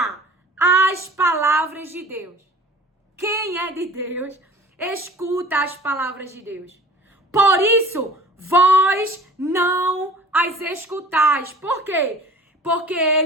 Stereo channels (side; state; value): both; normal; correlation 0.45